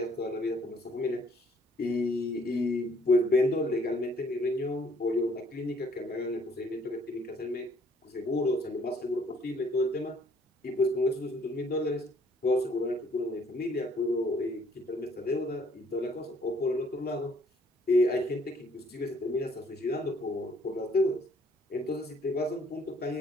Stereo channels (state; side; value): normal; both; correlation 0.62